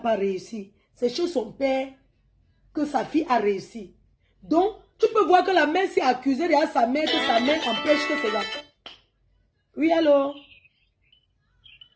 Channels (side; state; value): both; identical; correlation 1.00